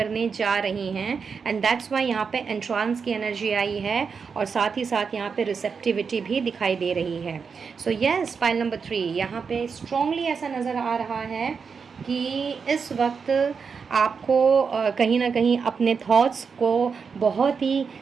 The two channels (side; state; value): left; quieter; 5.7 dB